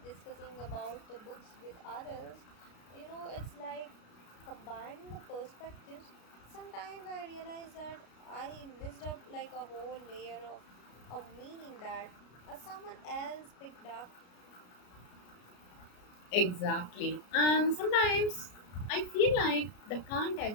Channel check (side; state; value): right; late; 33 ms